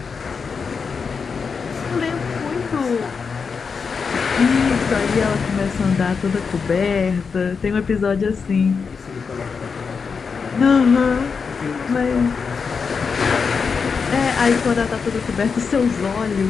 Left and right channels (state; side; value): quieter; right; 5.5 dB